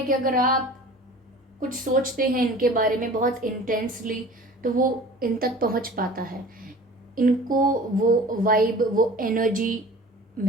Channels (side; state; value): both; normal; correlation 0.43